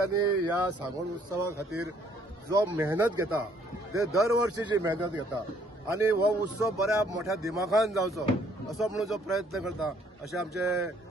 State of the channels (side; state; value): both; normal; correlation 0.64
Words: ह्या सांगोड उत्सवा खातीर जो मेहनत घेता ते दर वर्षीची मेहनत घेता आनी हो उत्सव बऱ्या मोठ्या दिमाखान जावचो असो म्हणून जो प्रयत्न करता अशें आमचे